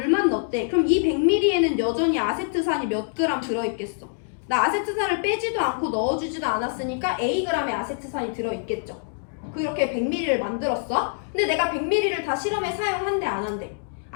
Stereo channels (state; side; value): silent; right; digital silence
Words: 넣었대. 그럼 이 100ml에는 여전히 아세트산이 몇 그램 들어있겠어? 나 아세트산을 빼지도 않고 넣어주지도 않았으니까 Ag의 아세트산이 들어있겠죠. 그렇게 100ml를 만들었어. 근데 내가 100ml를 다 실험에 사용한대 안 한대?